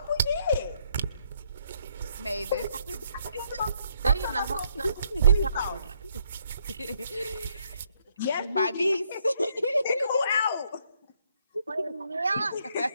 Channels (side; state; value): both; inverted; correlation -0.71